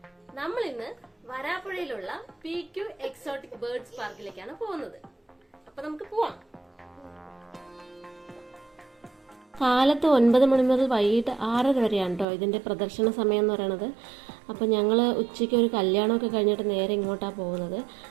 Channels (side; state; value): left; drops out; at 12.2 s